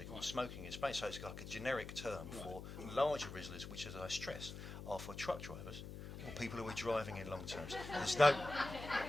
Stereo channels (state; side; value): noise; left; hum, 9 dB below the sound